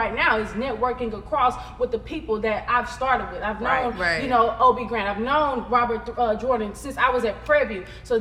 now is networking across with the people that I've started with. I've known, Obi Grant. I've known Robert Jordan since I was at Prairie View. So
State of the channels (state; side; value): identical; both; correlation 1.00